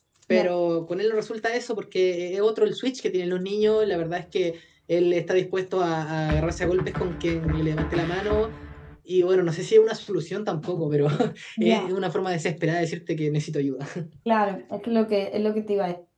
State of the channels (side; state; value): both; identical; correlation 1.00